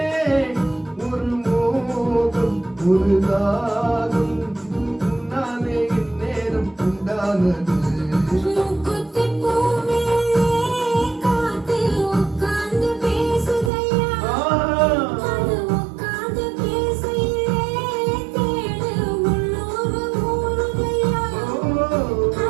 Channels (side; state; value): left; drops out; at 13.7 s